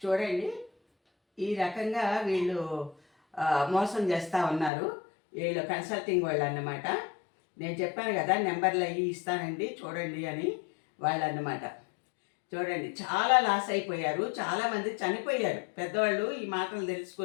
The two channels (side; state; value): right; drops out; at 4.7 s